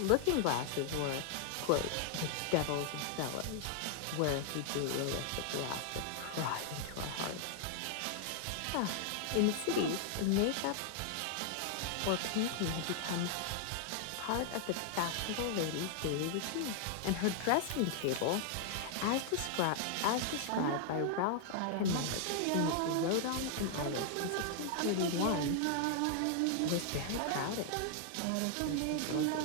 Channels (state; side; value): different; both; correlation 0.00